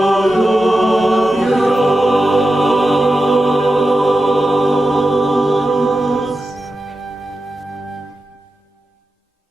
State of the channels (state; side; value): normal; both; correlation 0.91